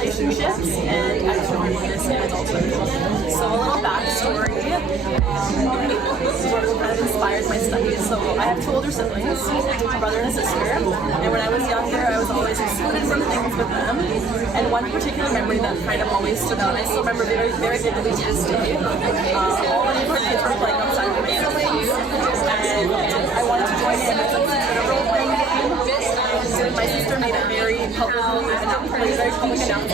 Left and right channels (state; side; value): quieter; left; 4.0 dB